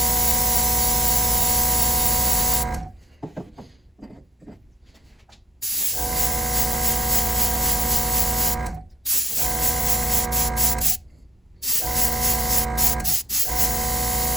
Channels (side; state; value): both; normal; correlation 0.59